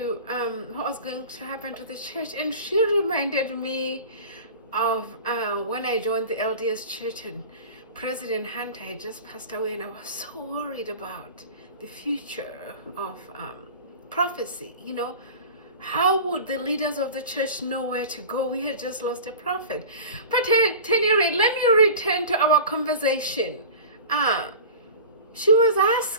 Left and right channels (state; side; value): inverted; both; correlation -0.35